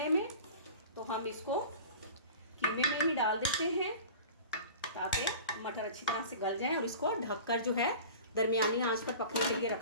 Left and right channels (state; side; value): inverted; both; correlation -0.39